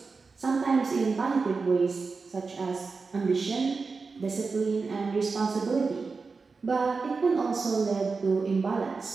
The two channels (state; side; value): quieter; left; 4.5 dB